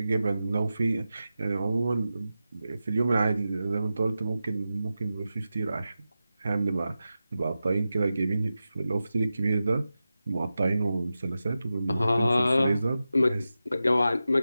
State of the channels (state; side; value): inverted; both; correlation -0.92